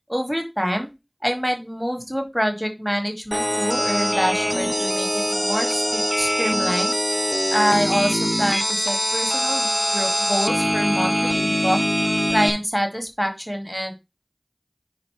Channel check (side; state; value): both; identical; correlation 1.00